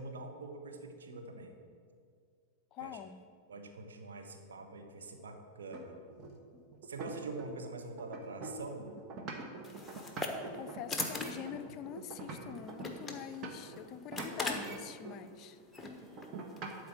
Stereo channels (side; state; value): both; normal; correlation 0.09